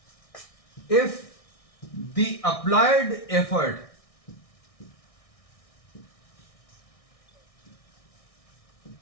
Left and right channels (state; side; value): late; right; 1.6 ms